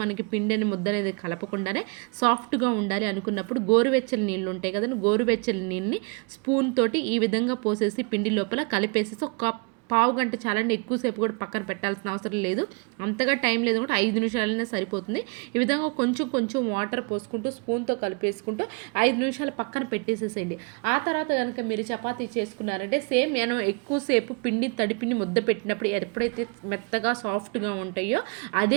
మనకి పిండిని ముద్ద అనేది కలపకుండానే సాఫ్ట్గా ఉండాలి అనుకున్నప్పుడు గోరువెచ్చని నీళ్ళు ఉంటాయి కదండి, గోరువెచ్చని నీళ్ళని స్పూన్ తోటి ఈ విధంగా పోసేసి పిండి లోపల కలిపేసేసి ఒక పావు గంట చాలండి, ఎక్కువసేపు కూడా పక్కన పెట్టాల్సిన అవసరం లేదు. అంతగా టైం లేదు కూడా 5 నిమిషాలైనా సరిపోతుంది. ఈ విధంగా కొంచెం కొంచెం వాటర్ పోసుకుంటూ స్పూన్తో కలిపేసుకుంటూ 5 నిమిషాలు పక్కన పెట్టేసేసేయండి. ఆ తర్వాత కనుక మీరు చపాతీ చేసుకున్నారంటే సేమ్ నేను ఎక్కువసేపు పిండి తడిపిండి ముద్ద పెట్టినప్పుడు ఎప్పుడైతే మెత్తగా సాఫ్ట్గా ఉంటాయో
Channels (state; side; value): quieter; left; 32.8 dB